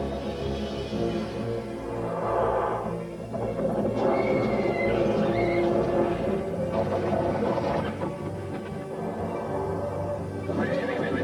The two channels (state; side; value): identical; both; correlation 1.00